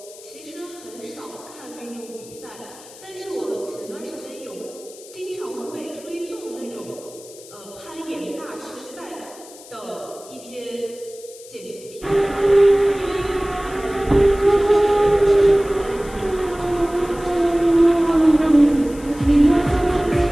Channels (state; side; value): noise; left; hiss, 19 dB below the sound